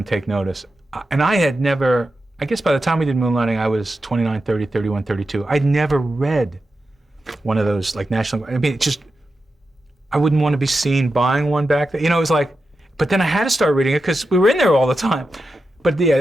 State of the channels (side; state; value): both; normal; correlation 0.90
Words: take notice. And I had never, I guess by the time we did Moonlighting, I was 29, 30, 31, 32. I'd never read one of those, like, national, I mean, I wouldn't want to be seen buying one back then. It was like, but then I had to start reading it because we were in there all the time. But yeah,